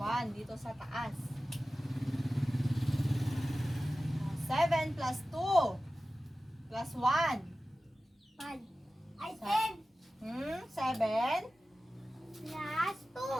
dito sa taas. 7 plus 2 plus 1. 5. Ay, Sa- 10 7. plus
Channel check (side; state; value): both; normal; correlation 0.95